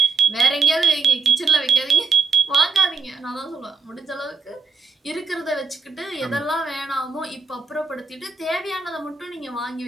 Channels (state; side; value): quieter; left; 4.8 dB